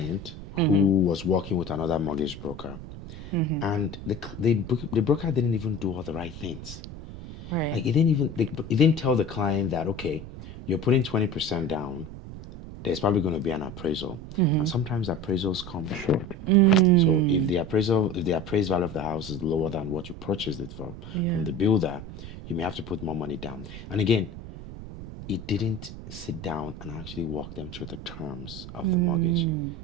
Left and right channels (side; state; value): right; noise; rumble, 12 dB below the sound